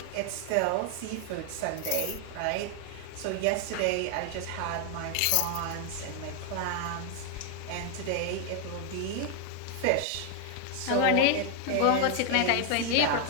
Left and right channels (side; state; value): both; different; correlation 0.00